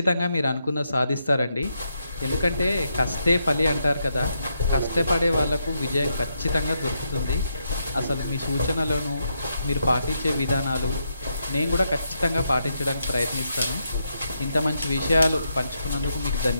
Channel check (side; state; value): both; inverted; correlation -0.81